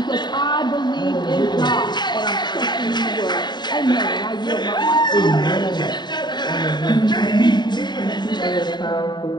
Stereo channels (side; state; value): right; late; 0.21 ms